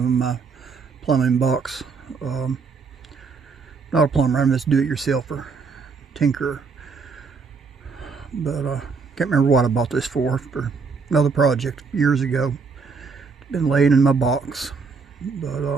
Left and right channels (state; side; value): quieter; left; 4.9 dB